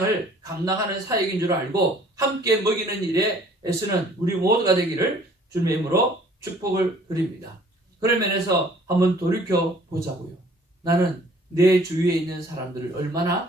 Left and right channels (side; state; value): both; normal; correlation 0.55